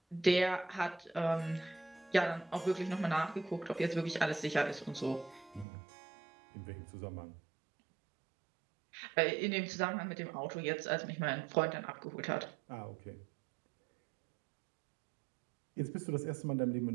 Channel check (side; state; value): left; drops out; at 5.7 s